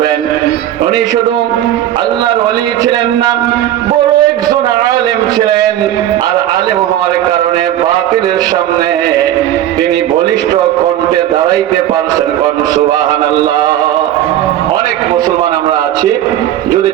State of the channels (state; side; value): quieter; left; 12.3 dB